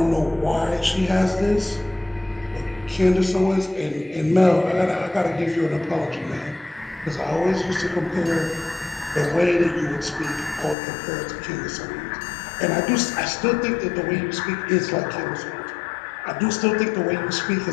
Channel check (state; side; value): drops out; right; at 10.8 s